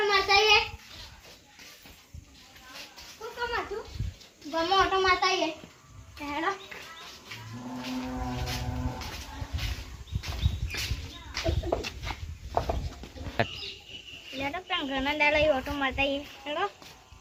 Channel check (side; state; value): both; identical; correlation 1.00